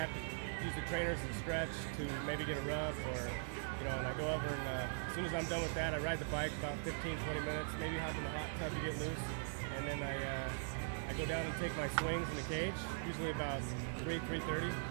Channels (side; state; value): left; silent; 50 dB below the other